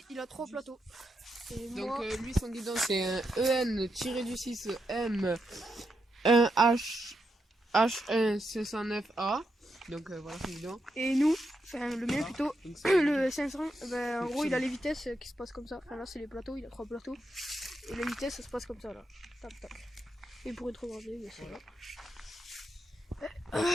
il a 3 plateaux. Et donc, moi... lui, son guidon, c'est un EN-6 M 1H H1 509A. Donc, voilà son guidon. Et nous, enfin, le mien plutôt, le 500, ben, en gros, il a les vitesses qui se passent comme ça. Enfin, là, c'est les plateaux, il a 3 plateaux. Et les vitesses, ça se passe comme ça, là. Tac, tac. Et pour être regardé, bien sûr.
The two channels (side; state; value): both; normal; correlation 0.83